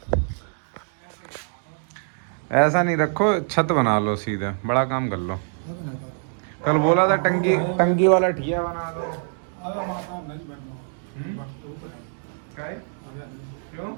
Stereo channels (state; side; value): silent; left; digital silence